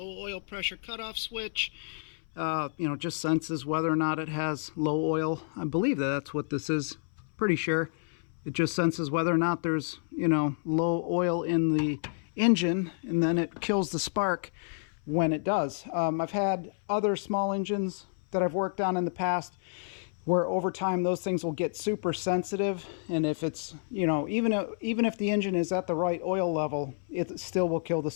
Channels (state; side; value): silent; right; 58 dB below the other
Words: oil pressure cutoff switch. You know, just senses whether or not it has low oil. I believe that that's what this is. Pretty sure. It just senses whether or not there's, you know, low oil in the engine, and then it kills the spark when it does. I've had other small engines that I've worked on in the past where over time those things will get super sensitive, and if it's, you know, even if the engine is at the right oil level, it still will kill the